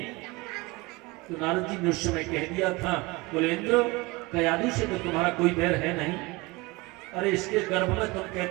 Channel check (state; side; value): quieter; left; 23.3 dB